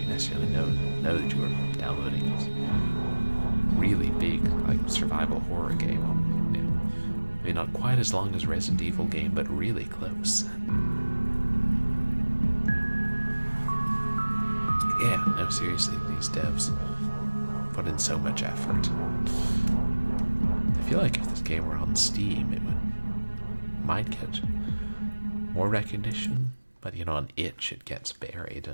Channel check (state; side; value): inverted; both; correlation -1.00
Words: necessarily know that you were downloading it. Really big, like, survival horror game. You know, maybe not quite as long as Resident Evil game, but really close. Yeah, no, seriously, these devs put in so much effort. I feel like if this game were on Steam, it might get more recognition, but you know, on itch it gets buried,